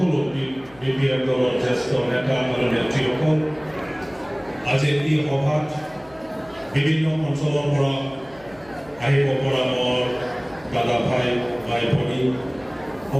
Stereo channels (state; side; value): noise; left; hum, 25 dB below the sound